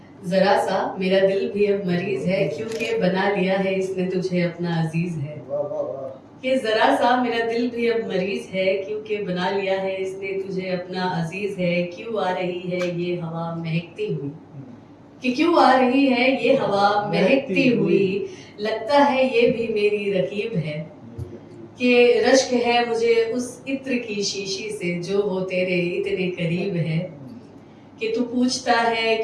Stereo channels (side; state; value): both; identical; correlation 1.00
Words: जरा सा मेरा दिल भी अब मरीज है, क्योंकि बना लिया है इसने तुझे अपना अजीज है। कि जरा सा मेरा दिल भी अब मरीज है, क्योंकि बना लिया है इसने तुझे अपना अजीज है। क्यों आ रही है ये हवा महकती हुई, कि क्यों आ रही है ये हवा महकती हुई, लगता है ये भी मेरी रकीब है। कि रश्क है मुझे उस इत्र की शीशी से जो वो तेरे इतने करीब है। कि तू पूछता है